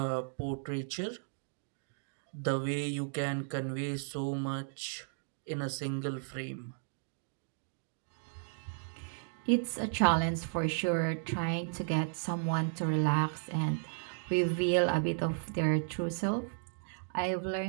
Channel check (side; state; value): left; silent; digital silence